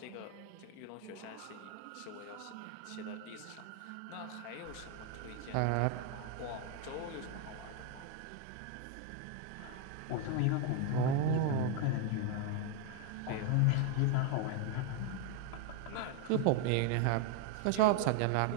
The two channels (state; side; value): different; both; correlation 0.01